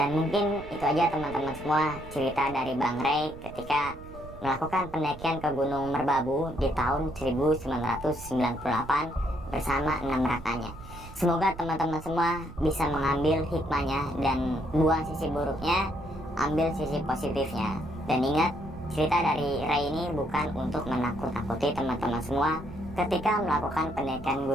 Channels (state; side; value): noise; right; rumble, 15 dB below the sound